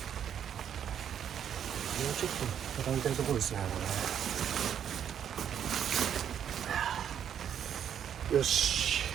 ょっと畳みたいところですね、これ。よし、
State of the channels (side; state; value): left; quieter; 8.9 dB